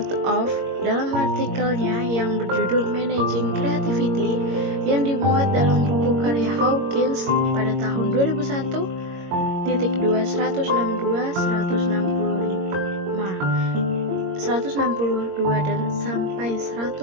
dalam artikelnya yang berjudul Managing Creativity yang dimuat dalam buku karya Hawkins pada tahun 2001.2-162 dan sampai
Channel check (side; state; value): left; late; 22 ms